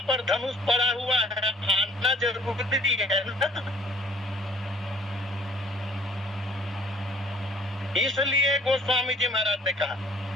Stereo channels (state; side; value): normal; both; correlation 0.56